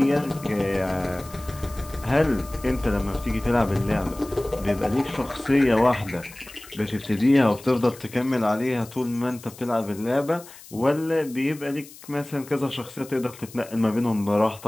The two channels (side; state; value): left; noise; hiss, 19 dB below the sound